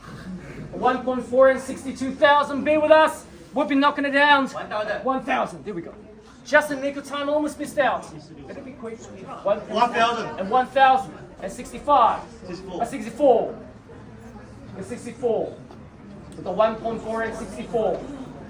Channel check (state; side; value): identical; both; correlation 1.00